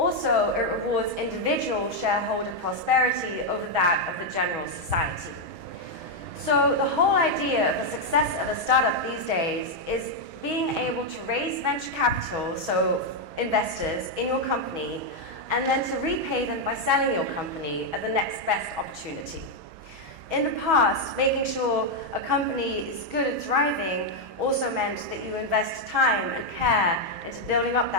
it rewards individual shareholder prosperity over that of the general society. So the whole idea of a success of a startup these days is being able to raise venture capital, so investors in your company, and then to repay them by selling your company at the next best opportunity. In the past, making sure a company is good and thriving also meant that you invest time and care into building up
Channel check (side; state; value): left; late; 6.2 ms